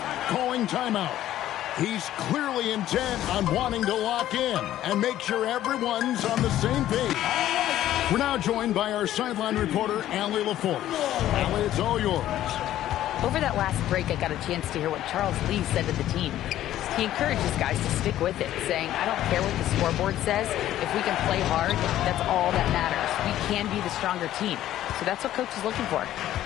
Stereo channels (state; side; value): quieter; right; 13.0 dB